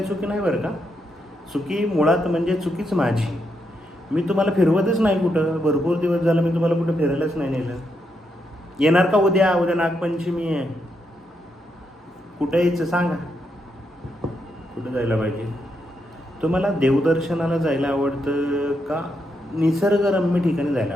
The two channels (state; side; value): normal; both; correlation 0.81